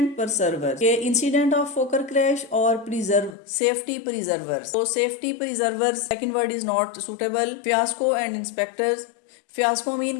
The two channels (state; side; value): drops out; right; at 3.4 s